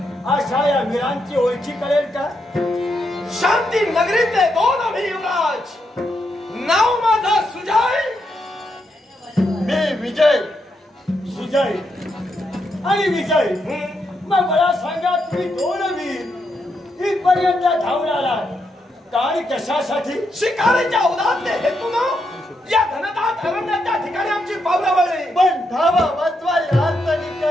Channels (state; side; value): normal; both; correlation 0.81